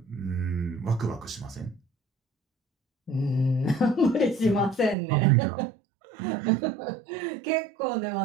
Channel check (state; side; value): drops out; left; at 5.0 s